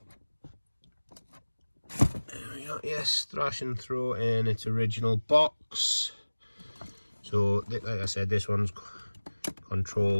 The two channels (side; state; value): both; inverted; correlation -1.00